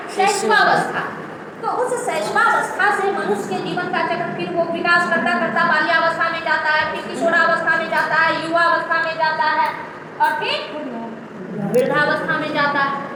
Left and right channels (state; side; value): identical; both; correlation 1.00